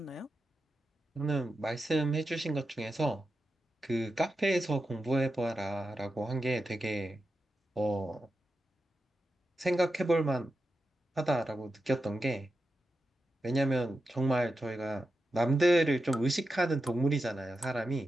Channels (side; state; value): both; normal; correlation 0.90